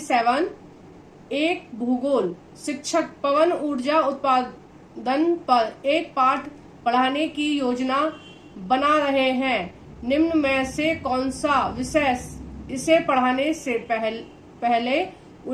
एक भूगोल शिक्षक पवन ऊर्जा उत्पादन पर एक पाठ पढ़ाने की योजना बना रहे हैं। निम्न में से कौन सा विषय इसे पढ़ाने से पहले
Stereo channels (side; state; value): both; identical; correlation 1.00